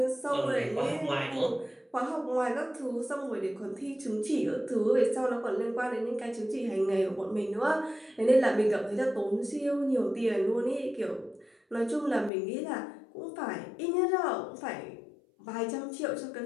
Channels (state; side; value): drops out; right; at 12.3 s